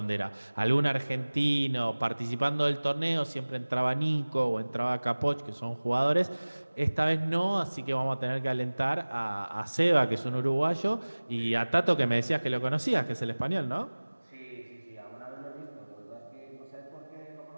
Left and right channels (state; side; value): inverted; both; correlation -1.00